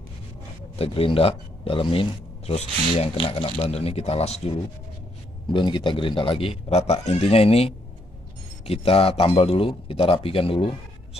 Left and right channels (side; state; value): both; normal; correlation 0.73